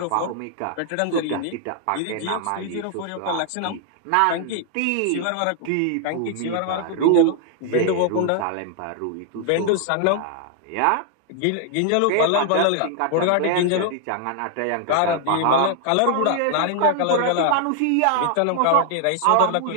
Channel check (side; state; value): both; different; correlation 0.00